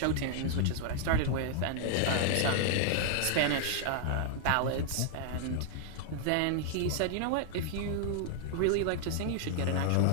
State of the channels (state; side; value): different; both; correlation 0.00